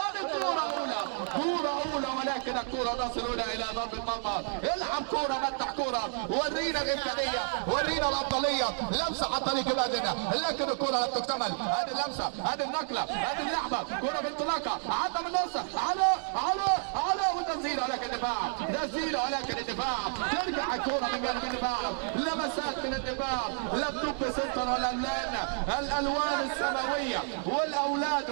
كوره اولى، كوره اولى، ولكن الكوره تصل هنا الى ضرب المرمى. العب كوره، متع كوره، ورينا الامكانيه، ورينا الافضليه. لمسه على طريق بادنا، لكن الكوره لم تكتمل. هذه اللمسه، هذه النقله، هذه اللعبه، كرة بانطلاقة عدى من النص على وتسديده، ولكن الدفاع، تسديده ولكن الدفاع، ترجع الكرة من جانب الدفاع، لمسات من الدفاع. لابتوب سنتر الالوان السماوية والاولاد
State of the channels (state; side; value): silent; left; 58 dB below the other